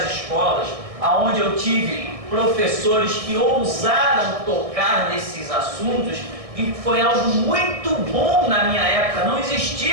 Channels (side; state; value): left; late; 1.6 ms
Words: escolas, onde eu tive professores que ousaram tocar nesses assuntos, e foi algo muito bom na minha época. Não